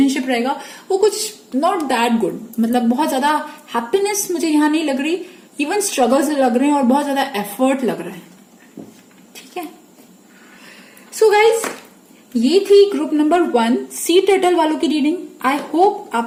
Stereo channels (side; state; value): both; identical; correlation 1.00